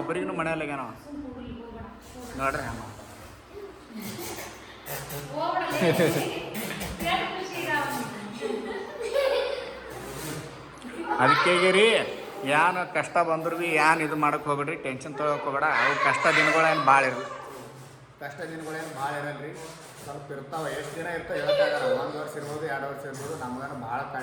ಮನೆಯಲ್ಲಾಗ್ಯಾನ ನೋಡ್ರಿ. ಹಂಗ ಅದಕ್ಕೆ ರೀ ಏನು ಕಷ್ಟ ಬಂದ್ರು ಭೀ ಏನು ಇದು ಮಾಡೋಕೆ ಹೋಗ್ಬೇಡ್ರಿ, ಟೆನ್ಷನ್ ತೊಗೊಳಕ್ಕೆ ಹೋಗ್ಬೇಡ. ಅವು ಕಷ್ಟ ದಿನಗಳೇನು ಭಾಳ ಇರಲ್ಲ, ಇರಲ್ಲ ರೀ. ಸ್ವಲ್ಪ ಇರ್ತಾವೆ, ಎಷ್ಟು ದಿನ ಇರ್ತಾವೆ ಹೇಳೋಕ್ಕಾಗಲ್ಲ. 1 ವರ್ಷ ಇರ್ಬೋದು 2 ವರ್ಷ ಇರ್ಬೋದು. ನಮಗೇನು ಭಾಳ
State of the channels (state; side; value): identical; both; correlation 1.00